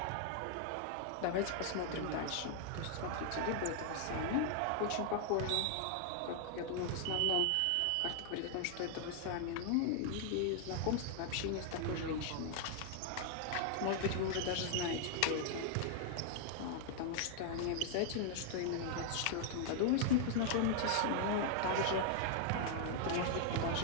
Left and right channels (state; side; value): different; both; correlation 0.00